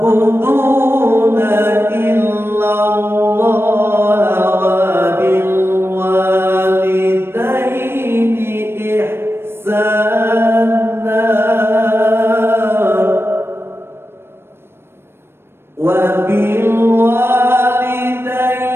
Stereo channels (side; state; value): left; late; 0.12 ms